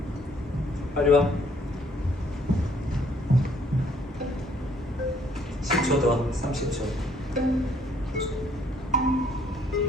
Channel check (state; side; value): normal; both; correlation 0.64